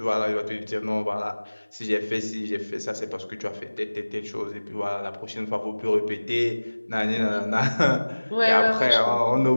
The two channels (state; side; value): inverted; both; correlation -1.00